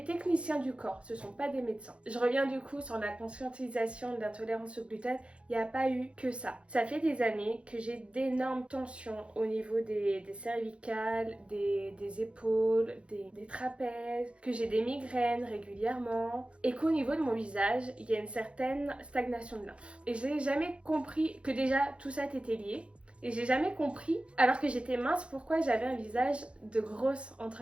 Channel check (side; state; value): left; late; 0.059 ms